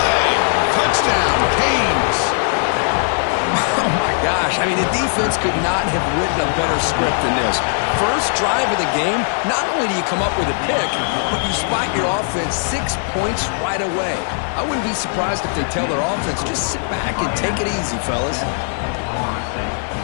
Touchdown, Canes. Oh, my gosh. I mean, the defense could not have written a better script than this. First drive of the game, not only do you come up with a pick, but you spot your offense 6 points right away. I wouldn't be surprised if they tell their offense, just sit back and take it easy, fellas.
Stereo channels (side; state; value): right; silent; 67 dB below the other